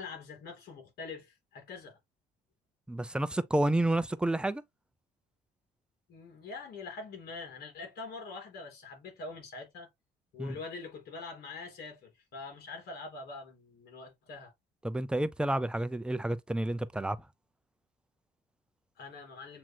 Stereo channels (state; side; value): normal; both; correlation 0.88